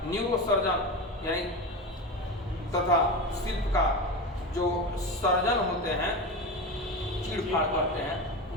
न्यूरो सर्जन यानी तथा शिल्पकार जो सर्जन होते हैं, चीड़-फाड़ करते हैं,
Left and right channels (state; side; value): normal; both; correlation 0.23